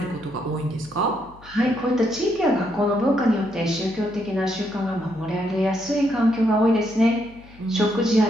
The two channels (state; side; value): noise; left; hum, 23 dB below the sound